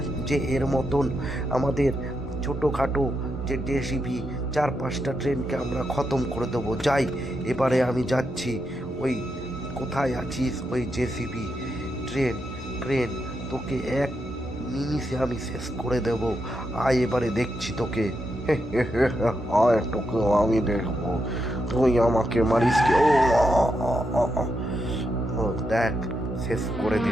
যে এর মতন আমাদের ছোটোখাটো যে জেসিবি 4-5টা ট্রেনকে আমরা খতম করে দেবো। যাই এবারে আমি যাচ্ছি। ওই কোথায় আছিস ওই জেসিবি ক্রেন, তোকে এক নিমিষে আমি শেষ করে দেব। আয় এবারে দেখছি তোকে। আয় তোকে আমি দেখবো, তুই আমাকে মারিস কি? ও দেখ, শেষ করে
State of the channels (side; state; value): both; normal; correlation 0.83